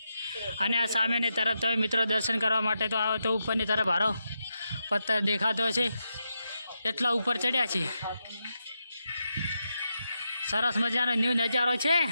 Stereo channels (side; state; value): both; inverted; correlation -0.86